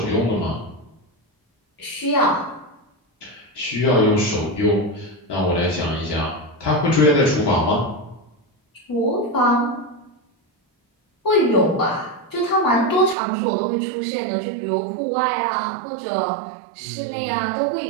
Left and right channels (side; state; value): left; drops out; at 13.2 s